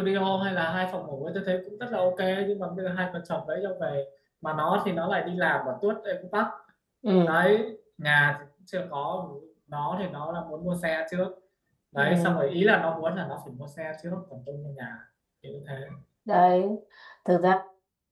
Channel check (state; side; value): identical; both; correlation 1.00